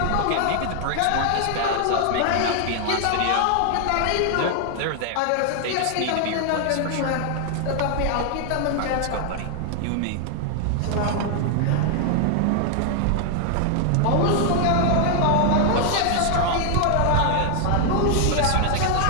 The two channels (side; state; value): both; different; correlation 0.00